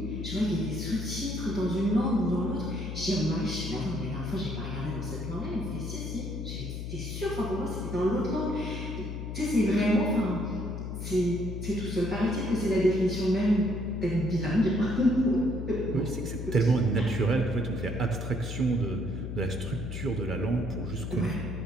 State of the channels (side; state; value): left; noise; hum, 6 dB below the sound